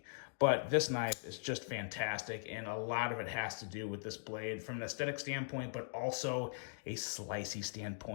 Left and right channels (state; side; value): silent; right; digital silence